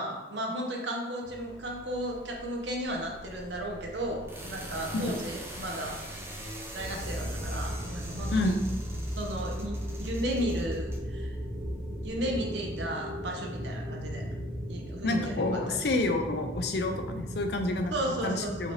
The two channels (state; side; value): normal; both; correlation 0.49